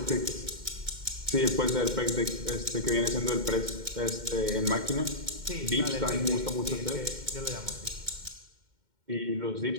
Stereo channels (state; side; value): late; left; 2.1 ms